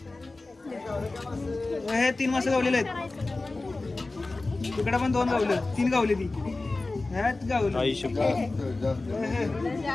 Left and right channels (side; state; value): right; quieter; 3.3 dB